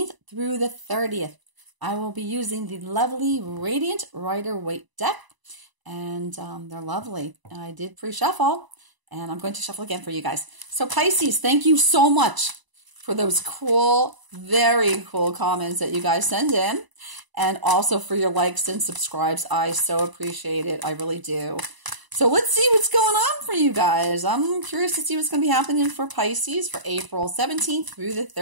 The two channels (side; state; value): left; late; 1.0 ms